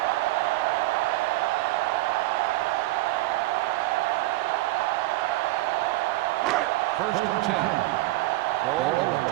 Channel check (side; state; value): left; quieter; 18.8 dB